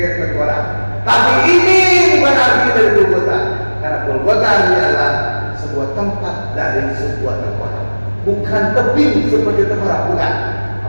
tengkorak. Tapi ini bukan arti dari Golgota, karena Golgota adalah sebuah tempat dari sebuah tengkorak, bukan tebing seperti tengkorak, bukan.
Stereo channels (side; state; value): both; inverted; correlation -1.00